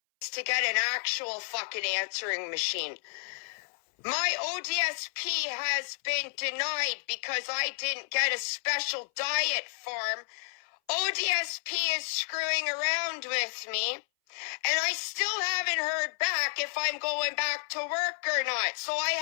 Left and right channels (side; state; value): right; silent; 57 dB below the other